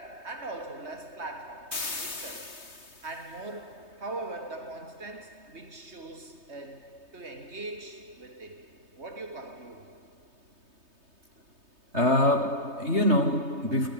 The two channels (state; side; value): late; left; 3.2 ms